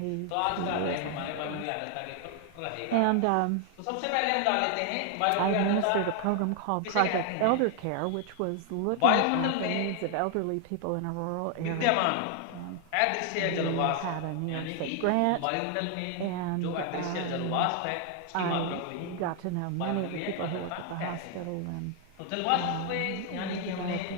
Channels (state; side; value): different; both; correlation 0.00